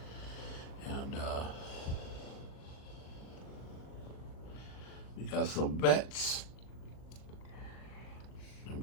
and we got some vets, and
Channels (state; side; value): late; right; 39 ms